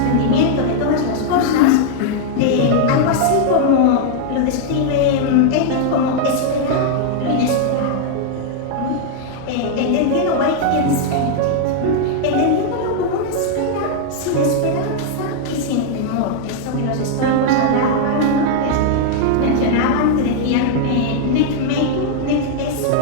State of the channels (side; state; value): both; different; correlation 0.00